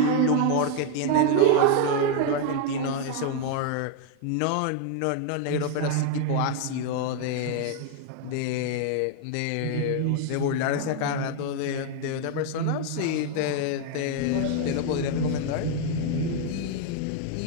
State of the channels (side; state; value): both; different; correlation 0.01